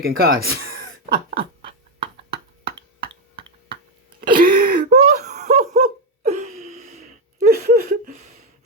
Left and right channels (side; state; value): both; normal; correlation 0.06